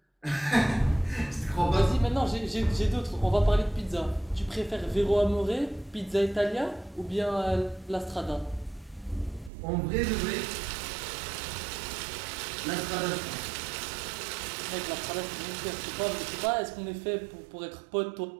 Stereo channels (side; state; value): left; drops out; at 9.5 s